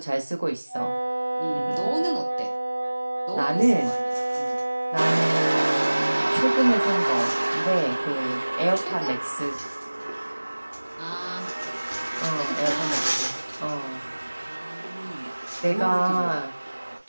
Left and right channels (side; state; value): both; inverted; correlation -1.00